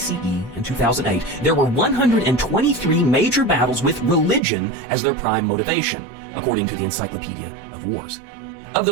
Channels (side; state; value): left; drops out; at 4.4 s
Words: and 2008, there were 123 major battles with religion as their prime motivation, according to the Encyclopedia of Wars. Of